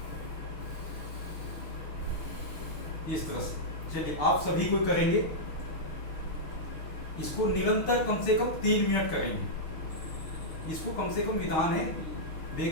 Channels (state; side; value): late; right; 6.6 ms